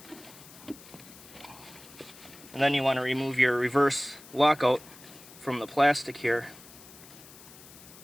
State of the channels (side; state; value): left; noise; hiss, 19 dB below the sound